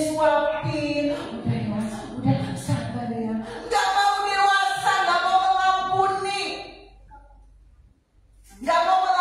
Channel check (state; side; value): identical; both; correlation 1.00